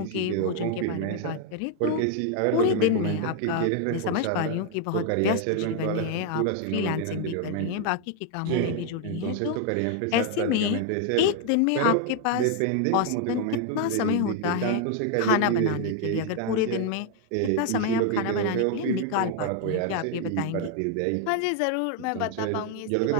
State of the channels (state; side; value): different; both; correlation 0.00